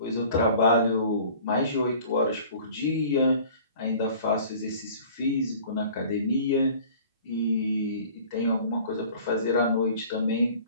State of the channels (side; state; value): both; inverted; correlation -0.47